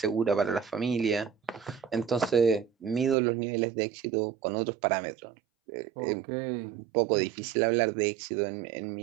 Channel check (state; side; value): drops out; left; at 3.2 s